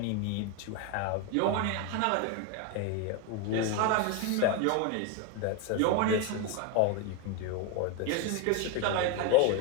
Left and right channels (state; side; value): different; both; correlation 0.02